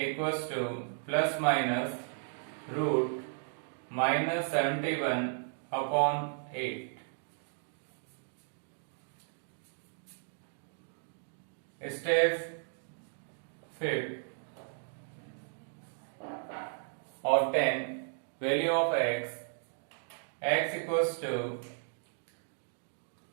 to plus minus root minus 71 upon 8. Step 5. Obtain value of x. X equals to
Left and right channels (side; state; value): left; silent; digital silence